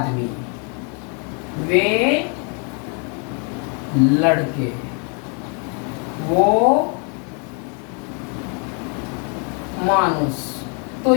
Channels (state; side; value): quieter; right; 38.0 dB